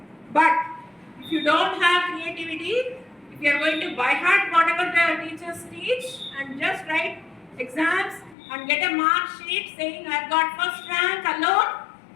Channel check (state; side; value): drops out; right; at 8.3 s